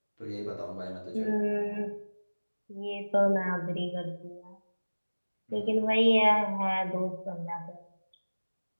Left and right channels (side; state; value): both; inverted; correlation -1.00